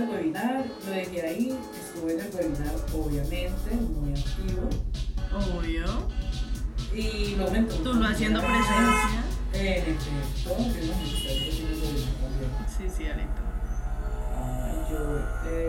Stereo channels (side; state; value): both; identical; correlation 1.00